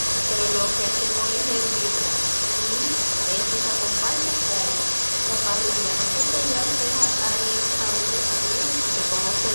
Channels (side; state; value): both; inverted; correlation -1.00